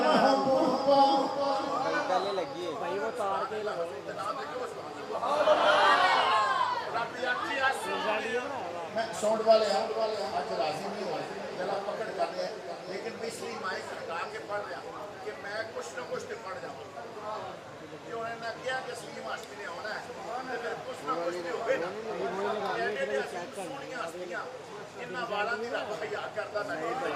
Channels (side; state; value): both; identical; correlation 1.00